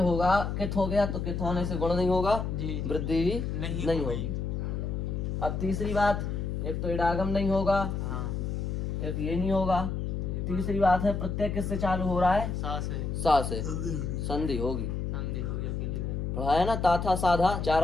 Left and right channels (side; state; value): left; noise; hum, 2 dB below the sound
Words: कित हो गया, तो कित होने से गुण नहीं होगा, जी। वृद्धि भी नहीं होगी। अब तीसरी बात, एक तो इडागम नहीं होगा, हाँ। एक ये नहीं होगा। तीसरी बात है प्रत्यय किससे चालू हो रहा है? सा से। सा से संधि होगी। संधि हो गया अकेली बार। पढ़ा है ना, ता था साधा, 4